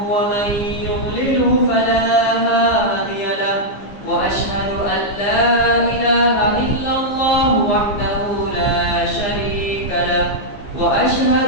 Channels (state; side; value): late; right; 15 ms